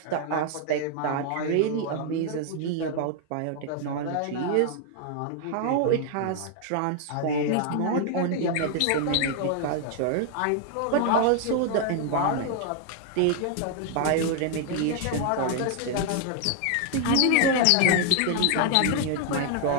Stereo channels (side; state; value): both; different; correlation 0.00